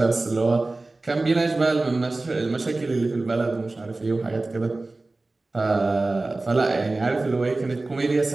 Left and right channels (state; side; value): quieter; left; 3.2 dB